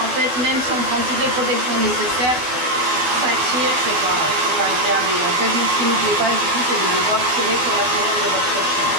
fait, même si on prend toutes les protections nécessaires, ça tire, c'est pas agréable. Et en fait, ce qui ne nous plaît pas du tout, c'est de devoir tirer sur la fourrure de votre chien.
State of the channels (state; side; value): late; left; 12 ms